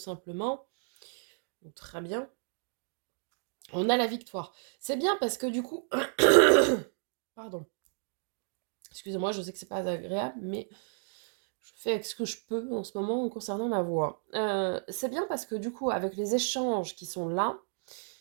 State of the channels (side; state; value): left; silent; 56 dB below the other